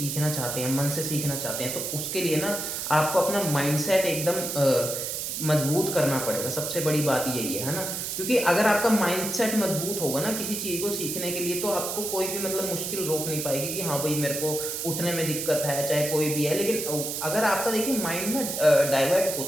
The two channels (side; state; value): right; noise; hiss, 4 dB below the sound